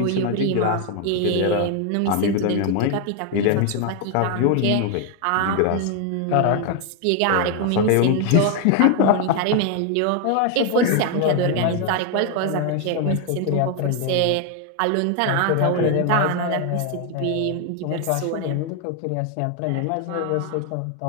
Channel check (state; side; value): different; both; correlation 0.01